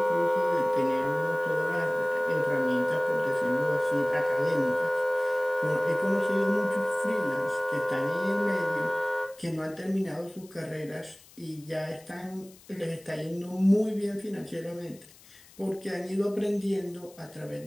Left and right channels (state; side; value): noise; left; hiss, 24 dB below the sound